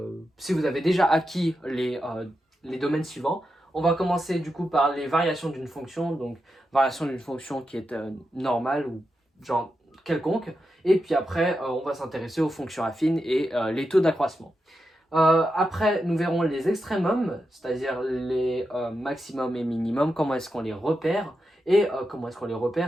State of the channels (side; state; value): both; normal; correlation 0.88